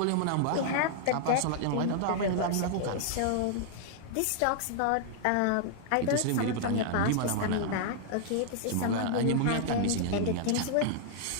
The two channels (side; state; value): both; different; correlation -0.01